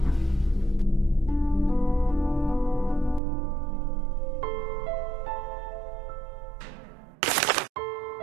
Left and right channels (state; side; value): drops out; left; at 3.2 s